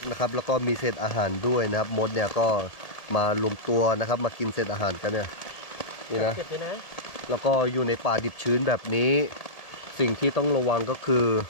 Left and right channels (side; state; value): right; late; 1.7 ms